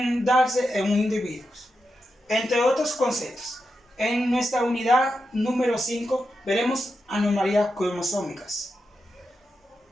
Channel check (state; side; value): normal; both; correlation 0.87